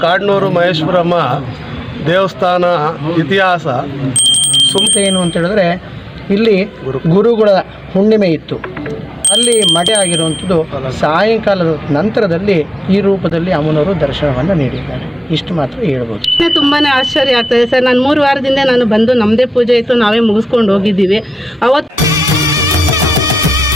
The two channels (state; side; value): normal; both; correlation 0.93